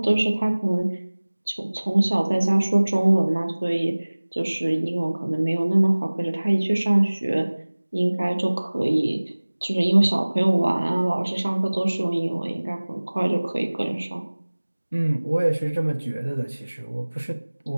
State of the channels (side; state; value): both; inverted; correlation -1.00